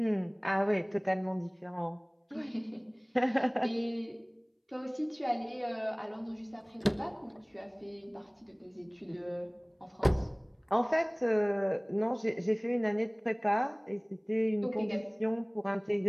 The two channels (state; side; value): identical; both; correlation 1.00